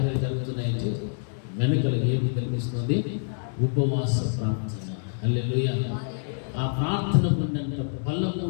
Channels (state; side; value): silent; right; digital silence